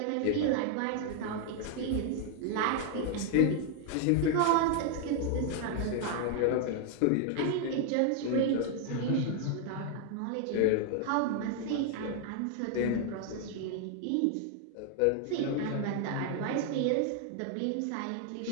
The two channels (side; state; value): both; different; correlation 0.00